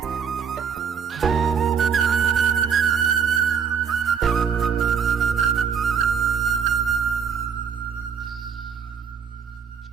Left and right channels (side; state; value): left; quieter; 6.9 dB